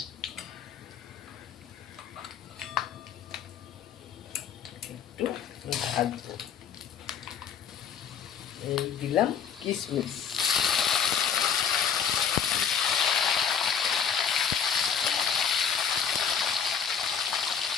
একটু ভাজবো। এই দিলাম কিশমিশ,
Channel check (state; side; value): quieter; right; 7.3 dB